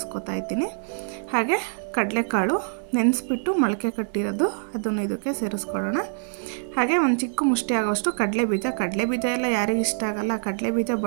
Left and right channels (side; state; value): left; silent; 62 dB below the other